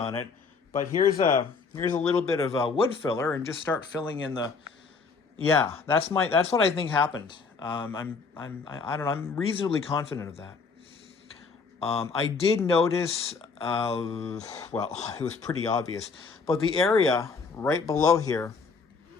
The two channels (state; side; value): quieter; right; 4.8 dB